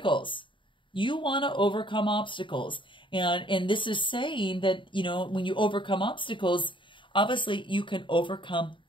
You want to overcome obstacles. And this is saying that, you know, when you overcome obstacles, obviously you can overcome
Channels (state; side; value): late; right; 0.24 ms